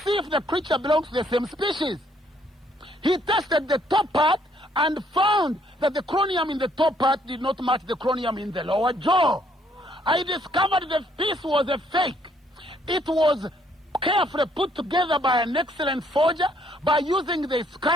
if the creature belongs to the same species. He tested the top part and found that the chromium in the top part did not match the chromium in the lower jaw. I discovered the piece was a fake. It was carefully put together by an excellent forger by using the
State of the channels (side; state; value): both; normal; correlation 0.67